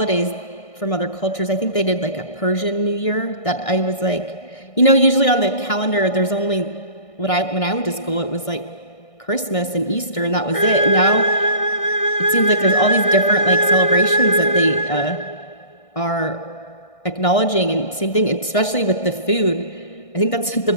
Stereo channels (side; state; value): right; late; 1.6 ms